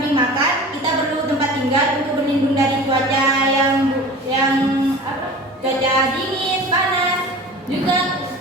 makan, kita perlu tempat tinggal untuk berlindung dari cuaca yang cuaca dingin, panas. Juga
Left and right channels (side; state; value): both; normal; correlation 0.38